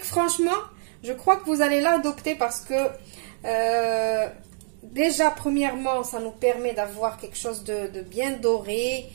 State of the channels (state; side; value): silent; left; 61 dB below the other